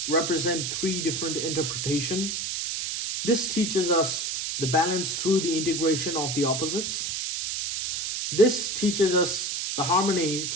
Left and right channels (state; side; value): noise; right; hiss, 2 dB below the sound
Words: represent three different interpretation. This teaches us the balance through the integration of the opposites. This teaches us the harmony